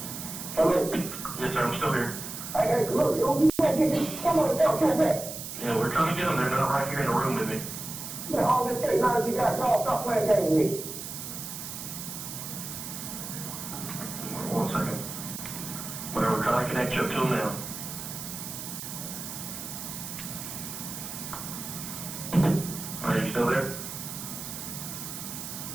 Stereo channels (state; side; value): noise; right; hiss, 8 dB below the sound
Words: Yes, sir, I'm still here. Hey, look, you can't get this. Come on, come back. Yeah, we're trying to get them. They're not right here in the room with me. Yeah, all this case, now that you got called, stop playing games with me. 1 second. Well, we're trying to connect you up to them now. Are you still there?